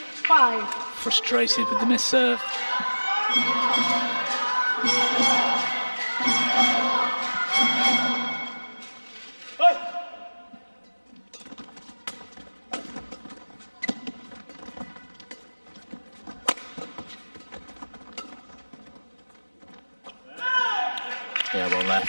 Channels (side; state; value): both; inverted; correlation -1.00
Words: Frustrated with the missed serve. Yeah, well